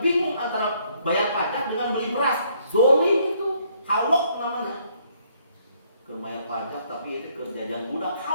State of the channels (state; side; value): inverted; both; correlation -0.67